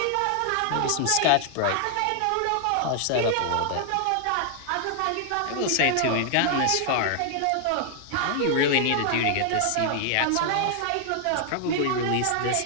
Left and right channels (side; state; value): both; different; correlation 0.00